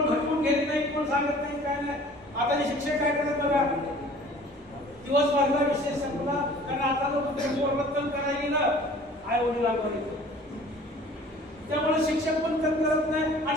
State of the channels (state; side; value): normal; both; correlation 0.49